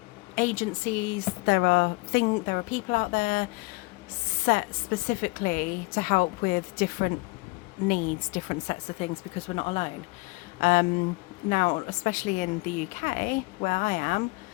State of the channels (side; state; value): right; quieter; 25.5 dB